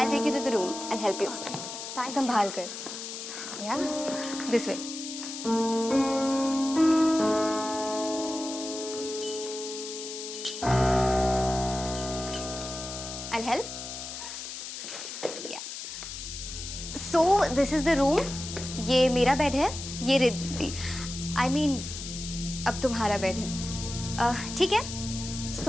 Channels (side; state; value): left; noise; hiss, 8 dB below the sound